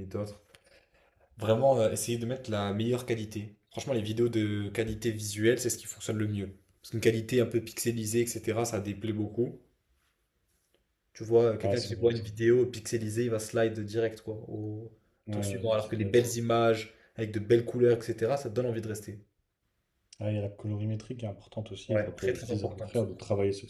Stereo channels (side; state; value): both; identical; correlation 1.00